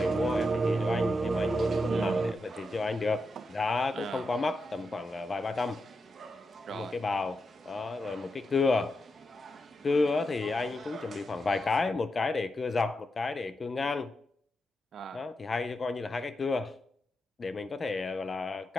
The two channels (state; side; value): normal; both; correlation 0.87